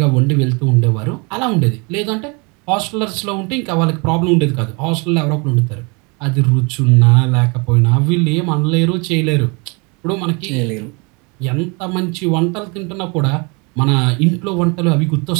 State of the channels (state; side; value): quieter; left; 30.6 dB